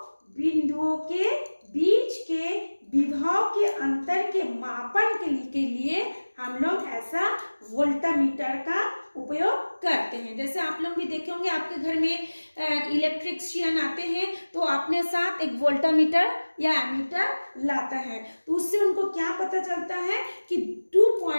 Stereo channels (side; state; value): both; inverted; correlation -1.00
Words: बिंदुओं के बीच के विभव के अंतर के मापन के लिए हम लोग ऐसा वोल्टामीटर का उपयोग करते हैं। जैसे आप लोग भी देखे होंगे आपके घर में इलेक्ट्रिशियन आते हैं तो अपने साथ एक वोल्टामीटर या एमीटर लाता है, तो उससे उनको क्या पता चलता है कि 2